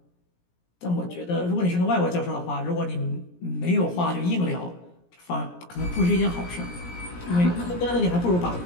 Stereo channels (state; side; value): late; right; 17 ms